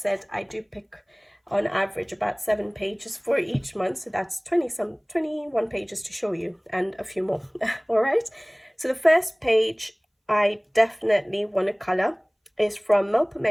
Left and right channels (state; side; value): identical; both; correlation 1.00